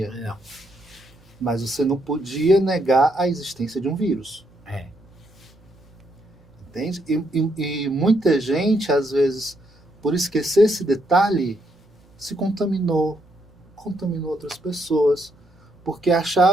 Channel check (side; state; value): both; normal; correlation 0.75